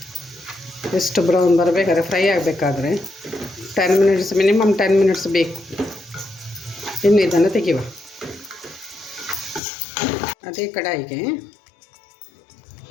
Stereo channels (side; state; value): right; drops out; at 9.6 s